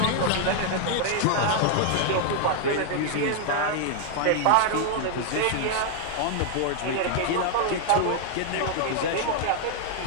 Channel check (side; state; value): both; different; correlation 0.00